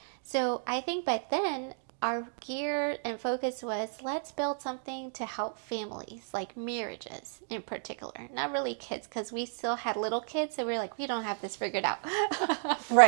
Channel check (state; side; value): silent; left; digital silence